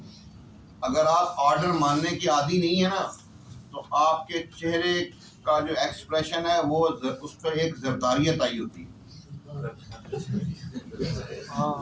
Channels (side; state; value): both; identical; correlation 1.00